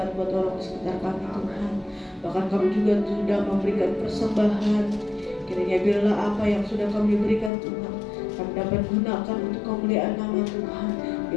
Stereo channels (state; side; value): drops out; right; at 7.5 s